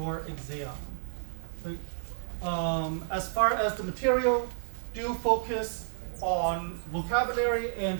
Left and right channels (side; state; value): left; silent; digital silence